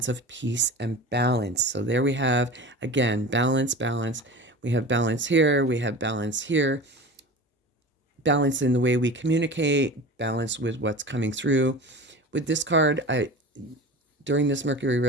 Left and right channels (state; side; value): normal; both; correlation 0.34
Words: of peace and balance. So there we have, again, balance, balance. We have balance here. We have balance here. Balance in the way we communicate, balance with what's coming through. With this card, during this Mercury